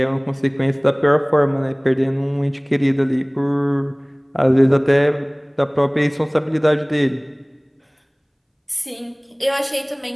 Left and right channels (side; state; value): both; identical; correlation 1.00